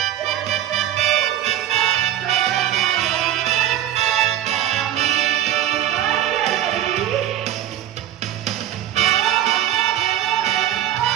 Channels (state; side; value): quieter; left; 12.2 dB